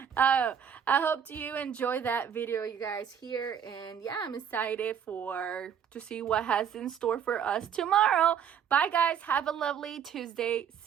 I hope you enjoy that video, you guys, here. And yeah, I'm excited to see what has in store for us tomorrow. Bye, guys. Have a lovely Tuesday.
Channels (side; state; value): left; quieter; 8.2 dB